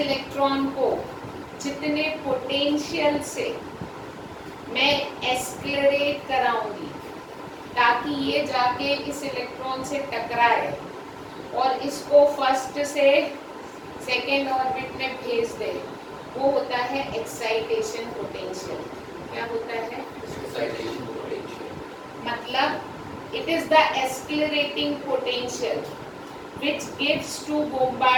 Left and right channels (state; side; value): identical; both; correlation 1.00